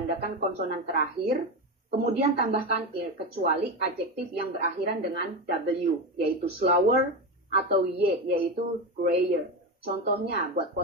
konsonan terakhir, kemudian tambahkan er, kecuali adjektif yang berakhiran dengan w, yaitu slower, atau y, yaitu grayer. Contohnya buat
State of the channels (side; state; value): both; normal; correlation 0.17